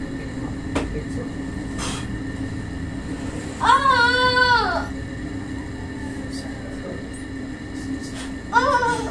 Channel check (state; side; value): identical; both; correlation 1.00